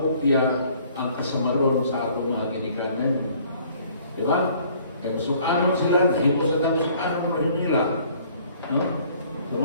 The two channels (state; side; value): inverted; both; correlation -0.57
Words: ang kasamaron sa atong mga ginikanan. Di ba? Kaya sukanon sila, himo sa tamo sukanon mo nila. No?